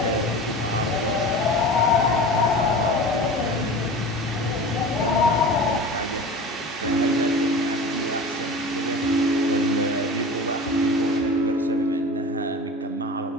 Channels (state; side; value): normal; both; correlation 0.35